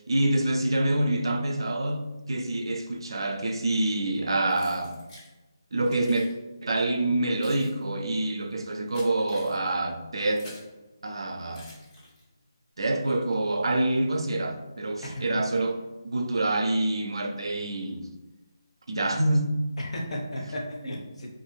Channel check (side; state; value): both; inverted; correlation -0.87